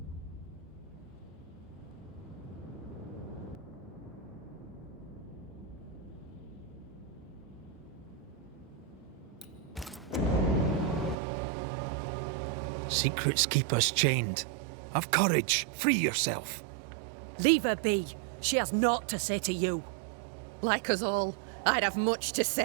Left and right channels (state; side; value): drops out; left; at 11.2 s